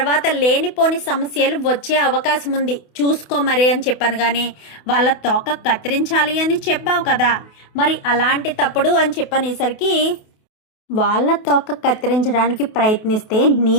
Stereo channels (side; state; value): right; late; 28 ms